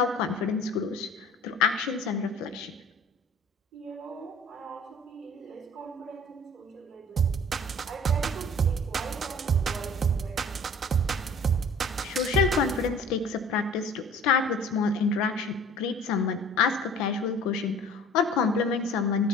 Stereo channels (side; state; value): both; normal; correlation 0.47